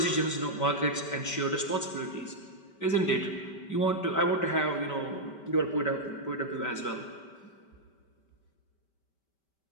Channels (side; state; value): right; late; 5.2 ms